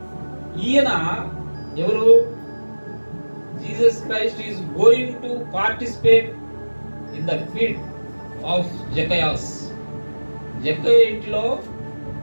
ఈయన ఎవరు? Jesus Christ is going to participate in the feed of Zacchaeus. Zakkayya ఇంటిలో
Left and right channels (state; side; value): inverted; both; correlation -1.00